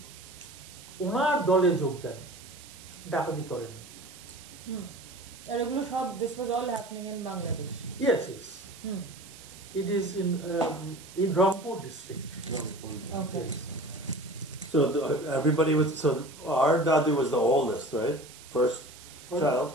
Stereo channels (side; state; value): right; noise; hiss, 18 dB below the sound